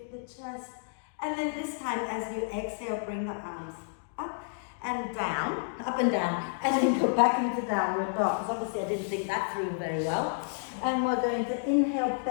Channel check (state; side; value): silent; right; digital silence